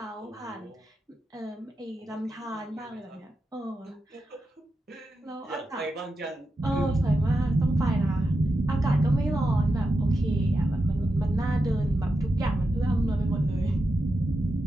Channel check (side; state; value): both; normal; correlation 0.88